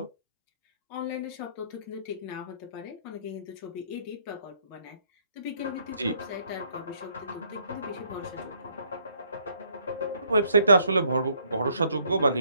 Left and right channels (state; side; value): inverted; both; correlation -0.67